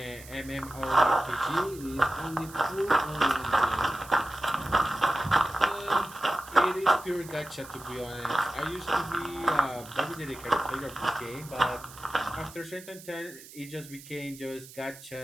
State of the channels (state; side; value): noise; right; hiss, 18 dB below the sound